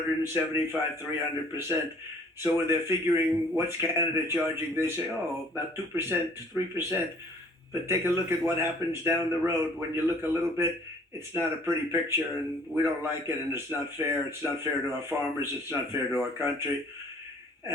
300%. So when they're figuring what's Canada charging, they say, oh, about 2%, 3%. But take a look at what happens down the road. When you look a little bit, it's not a pretty picture, and we don't like it, and it's not fair. It's not fair to our farmers. It's not fair to our country.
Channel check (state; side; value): normal; both; correlation 0.55